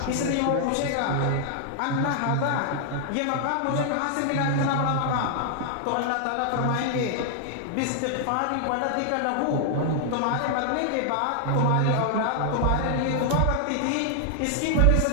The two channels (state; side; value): different; both; correlation 0.00